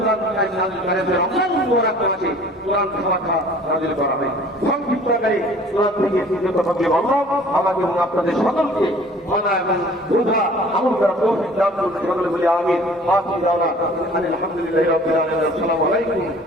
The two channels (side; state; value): both; normal; correlation 0.50